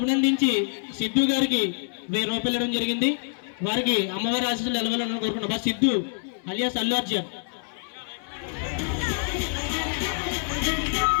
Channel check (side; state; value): right; silent; 61 dB below the other